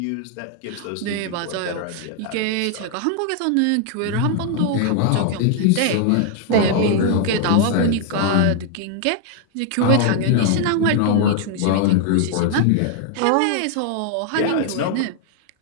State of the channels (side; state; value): both; different; correlation 0.00